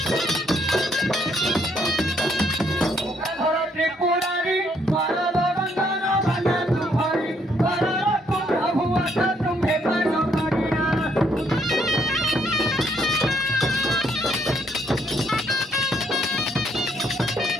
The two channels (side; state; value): both; normal; correlation 0.70